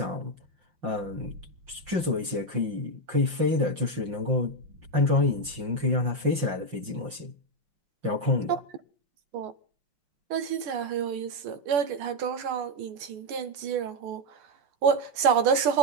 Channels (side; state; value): left; late; 5.7 ms